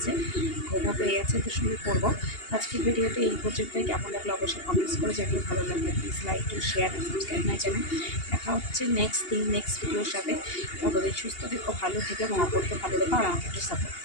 ঘুমও পেয়ে গেছে, তো শুরু করবো। আজকের ভিডিওতে এই পর্যন্তই। কেমন লাগলো অবশ্যই কমেন্টস করে জানিয়ে, ভালো লাগলে please like to share and subscribe my channel. দেখা হচ্ছে নেক্সট ভিডিওর সাথে। তবে সুস্থ থেকো, ভালো থেকো এবং অপরকে ভালো রেখো, আর আমাকে একটু সাপোর্ট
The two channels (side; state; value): right; late; 2.8 ms